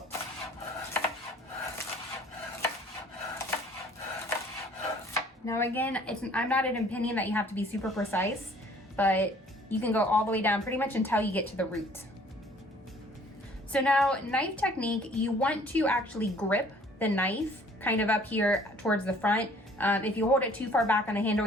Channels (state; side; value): normal; both; correlation 0.55